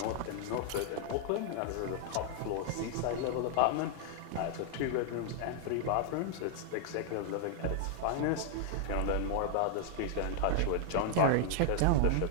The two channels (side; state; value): both; different; correlation -0.01